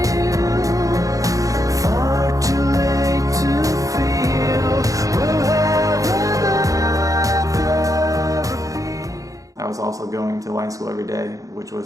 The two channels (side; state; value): left; late; 0.16 ms